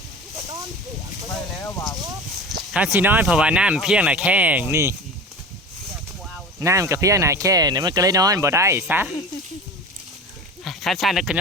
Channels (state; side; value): normal; both; correlation 0.33